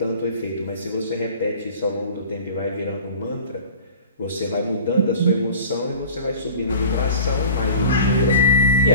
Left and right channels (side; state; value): both; inverted; correlation -0.40